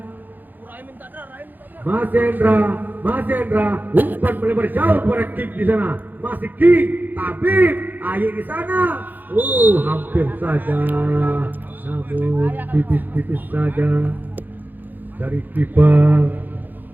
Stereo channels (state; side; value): late; left; 0.086 ms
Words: umpan melebar jauh kepada King di sana, masih King, Tabib, Aye di sana. Hampir saja, namun tipis saja dari kiper